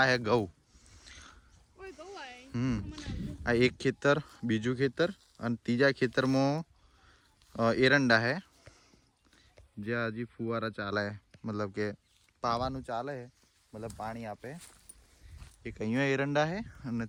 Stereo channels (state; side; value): identical; both; correlation 1.00